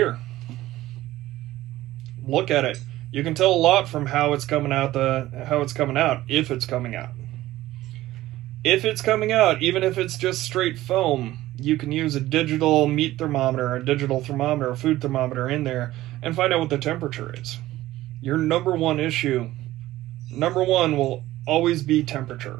Look at it. You can tell a lot from how it's coming out. If it's coming out. If it's coming out, even if it's just straight foam, you can use a digital meat thermometer, a digital thermometer, a food thermometer in there and find out what the temperature is. Your number one will always be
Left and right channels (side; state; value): left; quieter; 15.9 dB